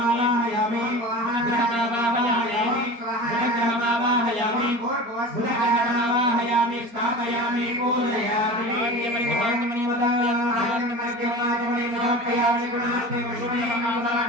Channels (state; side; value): late; left; 4.3 ms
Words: బుధగ్రహమావాహయామి స్థాపయామి పూజయామి.